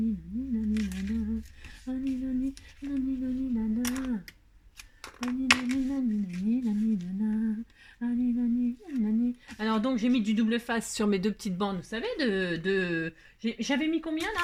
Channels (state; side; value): identical; both; correlation 1.00